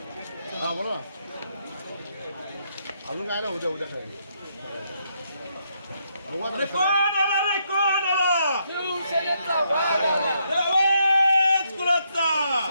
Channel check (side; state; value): both; inverted; correlation -0.76